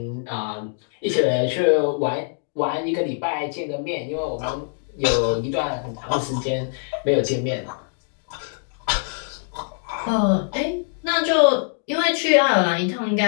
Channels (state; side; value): silent; right; 61 dB below the other